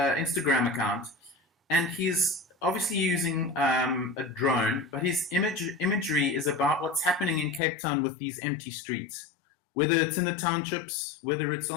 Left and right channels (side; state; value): right; drops out; at 7.6 s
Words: account, and he's obviously using a drone, but his imagery is about what's happening in Cape Town with these empty streets. Whether it's in the townships, whether it's